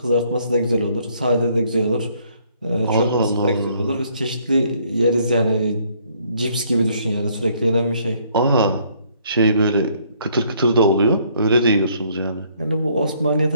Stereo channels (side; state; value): both; inverted; correlation -0.65